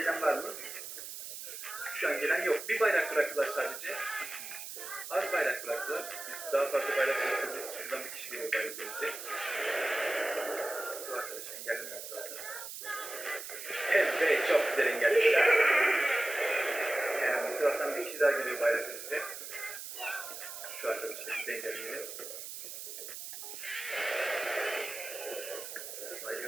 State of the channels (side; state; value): right; noise; hiss, 9 dB below the sound